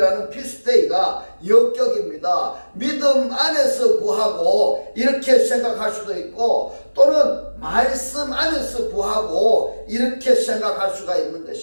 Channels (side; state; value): both; inverted; correlation -1.00